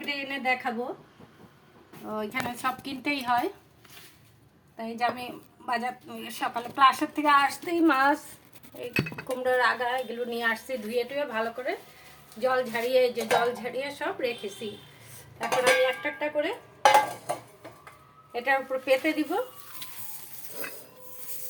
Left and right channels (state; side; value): identical; both; correlation 1.00